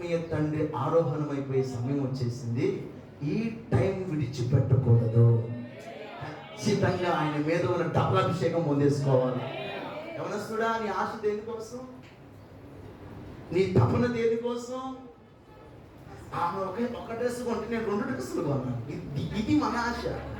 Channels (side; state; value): both; identical; correlation 1.00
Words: తండ్రి ఆరోహణమైపోయే సమయం వచ్చేసింది. ఈ టైం విడిచిపెట్టకూడదు. ఖచ్చితంగా ఆయన మీద ఉన్న డబుల్ అభిషేకం పొందేసుకోవాలి. యవనస్తుడా, నీ ఆశ దేనికోసం? నీ తపన దేనికోసం? ఆమె ఒక డ్రెస్ కొంటే నేను 2 డ్రెస్సులు కొన్నాను. ఇది మన ఆశ.